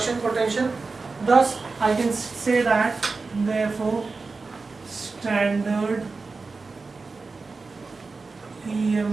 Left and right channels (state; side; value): quieter; left; 4.1 dB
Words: potential. Thus, I can say that, therefore, standard